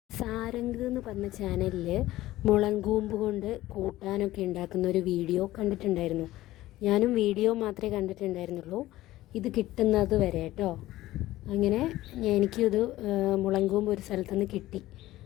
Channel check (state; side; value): quieter; right; 16.1 dB